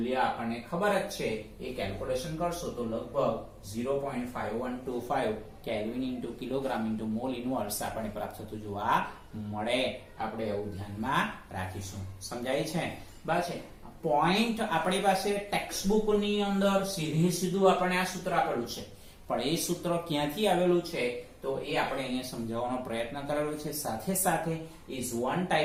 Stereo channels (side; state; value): both; identical; correlation 1.00